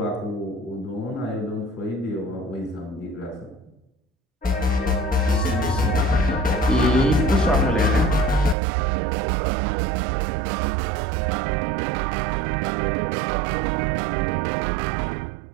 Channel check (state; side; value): drops out; left; at 8.6 s